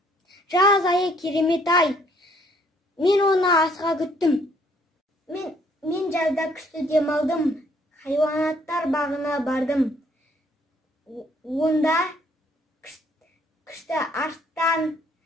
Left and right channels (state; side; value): normal; both; correlation 0.64